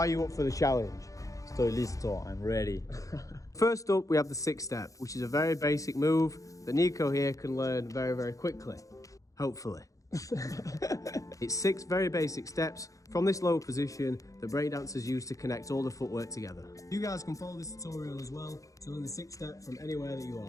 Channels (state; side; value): late; right; 0.16 ms